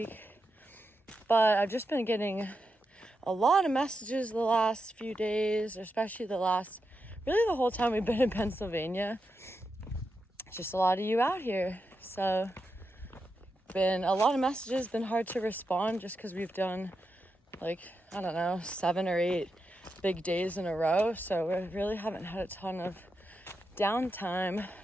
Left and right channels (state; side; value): normal; both; correlation 0.87